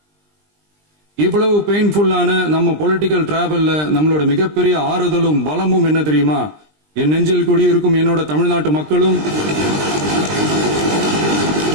இவ்வளவு பெயின்ஃபுல்லான நம்ம பொலிட்டிக்கல் டிராவல்ல நம்மளோட மிகப்பெரிய ஆறுதலும் பலமும் என்ன தெரியுமா? என் நெஞ்சில் குடியிருக்கும் என்னோட தமிழ்நாட்டு மக்களும்,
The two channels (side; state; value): left; late; 20 ms